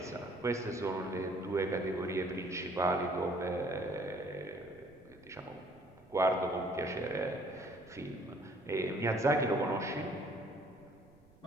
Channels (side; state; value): right; noise; rumble, 27 dB below the sound